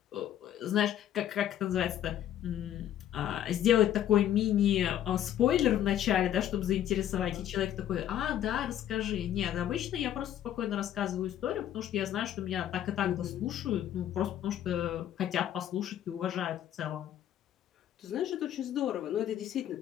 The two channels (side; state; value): right; quieter; 11.2 dB